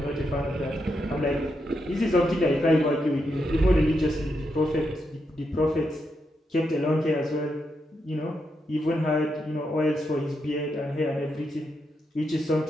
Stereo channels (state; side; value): normal; both; correlation 0.83